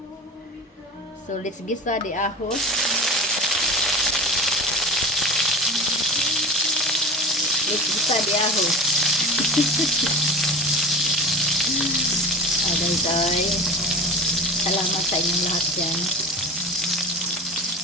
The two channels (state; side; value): normal; both; correlation 0.33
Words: So let's gisa the ahos. Let's gisa the ahos. Aday. Salamat sa inyong lahat yan.